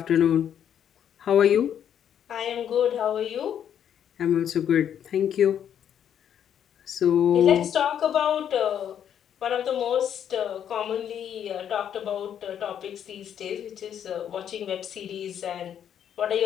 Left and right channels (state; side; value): quieter; right; 9.3 dB